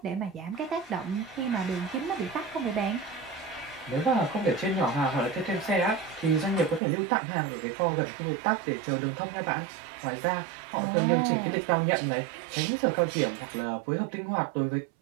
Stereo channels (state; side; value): drops out; left; at 6.8 s